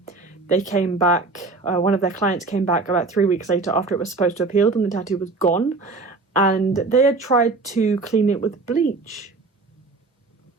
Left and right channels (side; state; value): left; quieter; 3.7 dB